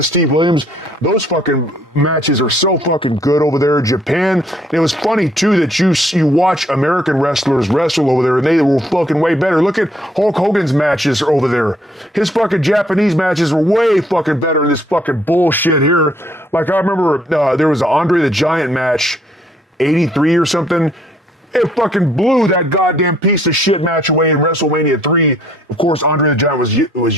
Steve Williams, those fucking matches are so fucking good over there in Japan. And it was funny too that you watch American wrestlers wrestle over there, and they were fucking way better. Look at Hulk Hogan's matches over there. His fucking Japanese matches were way fucking better than this fucking bullshit here. Like I remember there was an Andre the Giant match, 83 or something. It fucking blew that goddamn piece of shit match away in WrestleMania 3. Of course, Andre the Giant was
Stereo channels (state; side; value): normal; both; correlation 0.65